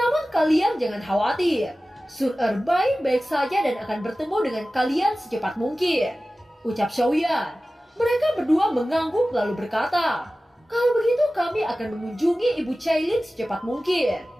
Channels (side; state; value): both; normal; correlation 0.96